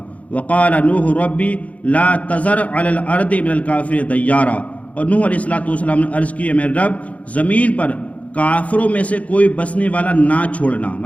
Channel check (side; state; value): right; late; 0.067 ms